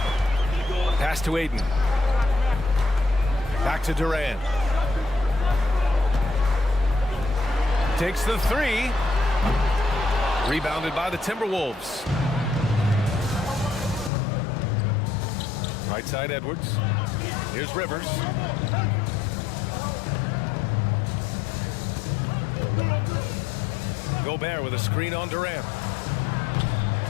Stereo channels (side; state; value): right; drops out; at 14.1 s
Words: Pass to Ayton. Back to Durant. Takes the 3. Rebounded by the Timberwolves. Right side Edwards. Here's Rivers. Gobert with a screen on Durant.